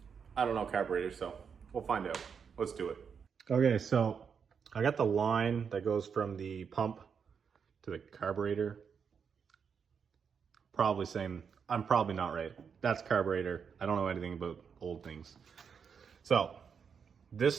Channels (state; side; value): quieter; left; 6.6 dB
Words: I don't know carburetors, so we'll find out. Let's do it. Okay, so I got the line that goes from the pump to the carburetor. Probably saying, I'm probably not right. That's carburetor. I don't know anything about old things. So